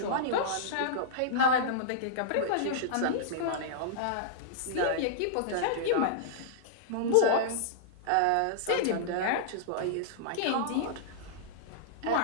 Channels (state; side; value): different; both; correlation -0.02